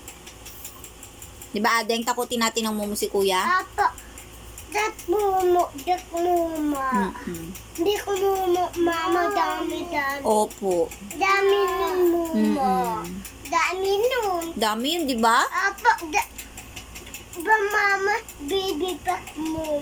Di ba, Adeng, takutin natin ng mumo si kuya? Apa, dat mumo. Hindi ko mumo, mama, dami. Opo. Dami ng mumo. Dami nun. Dami yun, di ba? Apa, ba mama, baby pa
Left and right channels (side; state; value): both; identical; correlation 1.00